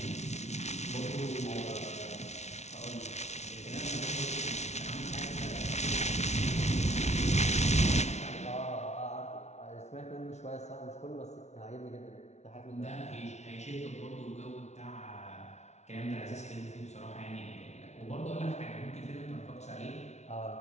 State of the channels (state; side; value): late; right; 0.32 ms